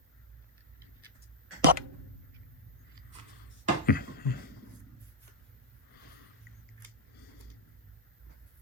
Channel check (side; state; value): both; normal; correlation -0.04